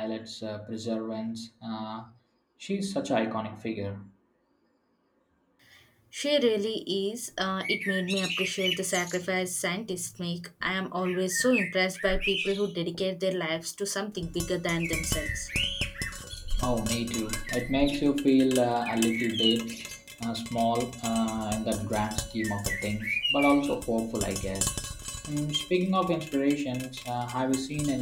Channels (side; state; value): both; identical; correlation 1.00